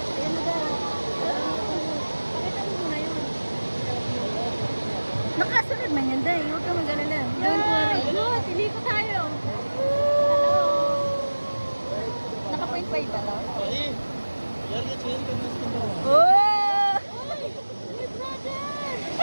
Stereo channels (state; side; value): inverted; both; correlation -1.00